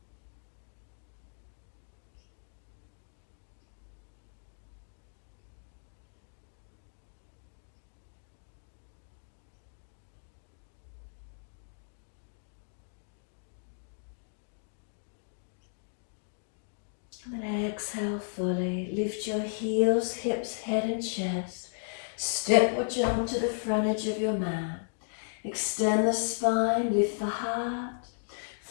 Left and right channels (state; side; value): silent; right; digital silence